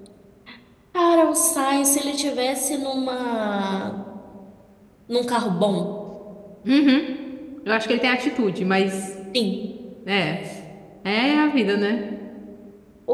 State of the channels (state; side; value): identical; both; correlation 1.00